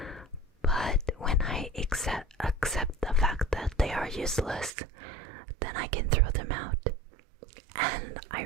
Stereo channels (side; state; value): left; drops out; at 4.7 s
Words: but when I accept the fact that they are useless, then I can throw them out. And I